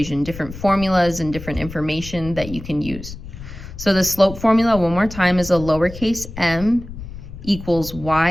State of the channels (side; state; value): left; noise; rumble, 12 dB below the sound